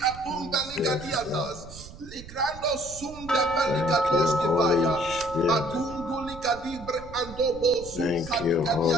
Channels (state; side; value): noise; right; rumble, 16 dB below the sound